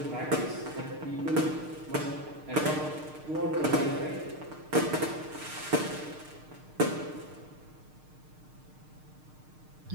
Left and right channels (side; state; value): left; late; 6.6 ms